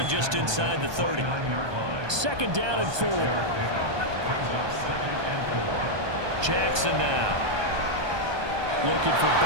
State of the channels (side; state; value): left; late; 1.2 ms